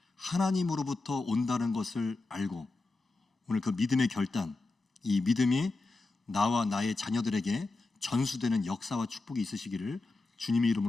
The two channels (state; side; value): quieter; right; 3.4 dB